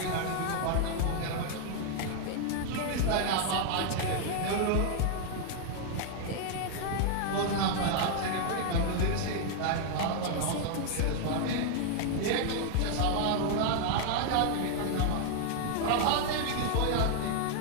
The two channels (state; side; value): different; both; correlation 0.00